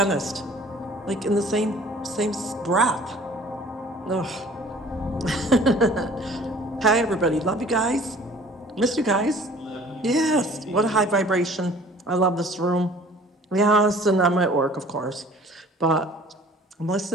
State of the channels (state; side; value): normal; both; correlation 0.50